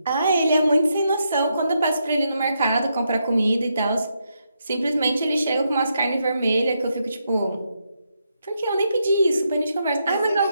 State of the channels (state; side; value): inverted; both; correlation -0.81